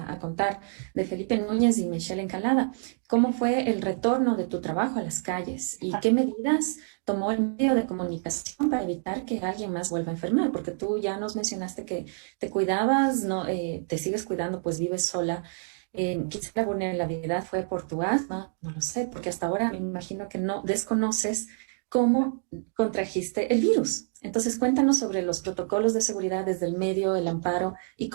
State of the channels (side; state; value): left; silent; digital silence